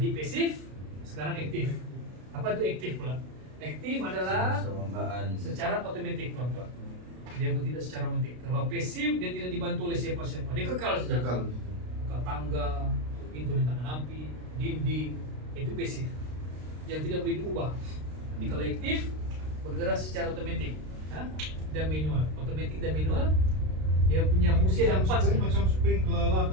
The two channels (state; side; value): late; left; 32 ms